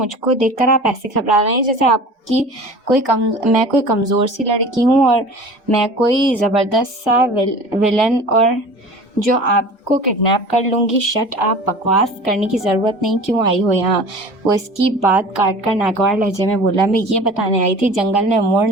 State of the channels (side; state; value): both; normal; correlation 0.40